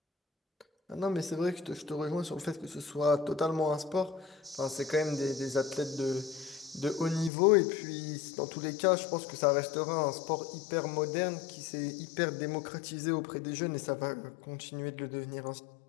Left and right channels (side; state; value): right; drops out; at 7.3 s